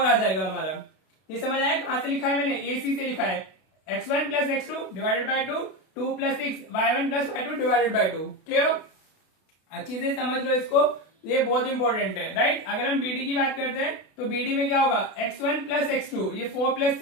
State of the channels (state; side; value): late; right; 32 ms